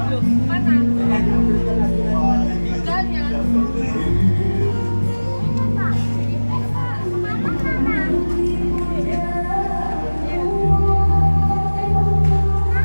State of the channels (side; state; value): both; inverted; correlation -1.00